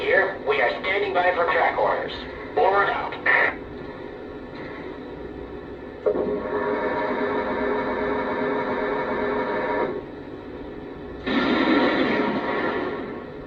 here. We are standing by for track orders. Over and out.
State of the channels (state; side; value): identical; both; correlation 1.00